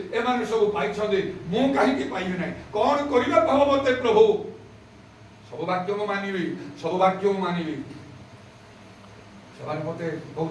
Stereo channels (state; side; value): identical; both; correlation 1.00